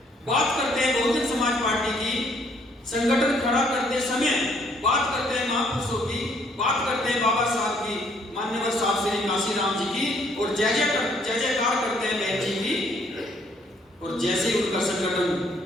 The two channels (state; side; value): normal; both; correlation 0.65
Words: बात करते हैं बहुजन समाज पार्टी की, संगठन खड़ा करते समय बात करते हैं महापुरुषों की, बात करते हैं बाबा साहब की, मान्यवर साहब श्री काशीराम जी की, और जय जयकार करते हैं बहन जी की। और जैसे ही उनका संगठन